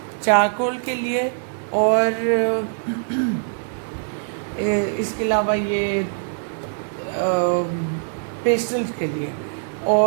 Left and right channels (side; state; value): left; silent; 64 dB below the other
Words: चारकोल के लिए, और इसके अलावा ये पेस्टल्स के लिए,